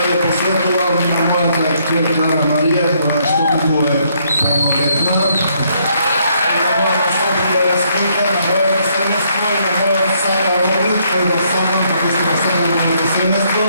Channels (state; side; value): inverted; both; correlation -0.70